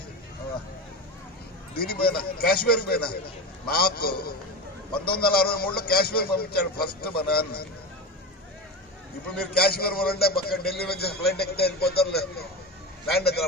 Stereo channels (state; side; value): normal; both; correlation 0.24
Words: దీనికి పోయినా కాశ్మీర్కి పోయినా నాకు 1963లో కాశ్మీర్ పంపించాడు ఫస్ట్ మా నాన్న ఇప్పుడు మీరు కాశ్మీర్ పోలంటే పక్కన ఢిల్లీ నుంచి ఫ్లైట్ ఎక్కితే వెళ్ళిపోతారు ల్యాండ్ దగ్గర